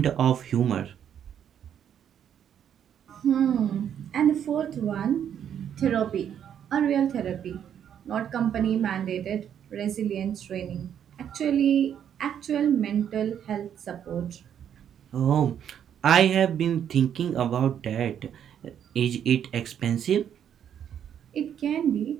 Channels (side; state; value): left; quieter; 9.2 dB